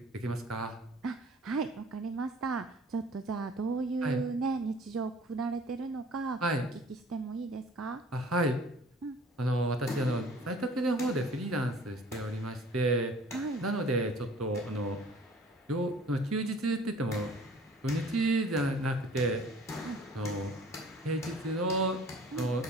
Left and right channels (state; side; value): normal; both; correlation 0.50